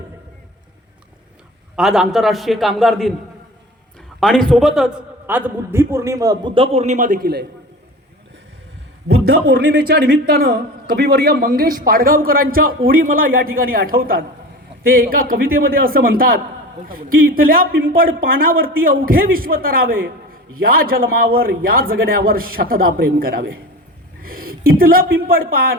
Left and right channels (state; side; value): normal; both; correlation 0.34